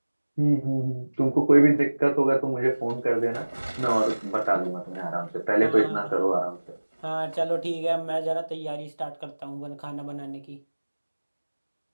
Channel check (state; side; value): inverted; both; correlation -1.00